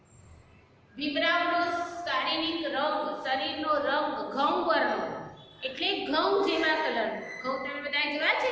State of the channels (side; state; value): both; identical; correlation 1.00